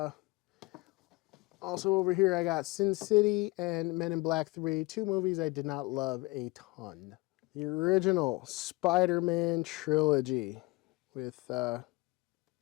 Also over here, I got Sin City and Men in Black 3, two movies I did not love a ton. The original Spider-Man trilogy with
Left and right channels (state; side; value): quieter; right; 23.3 dB